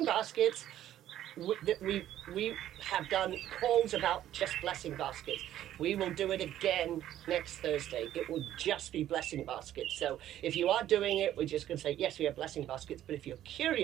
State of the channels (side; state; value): left; quieter; 12.2 dB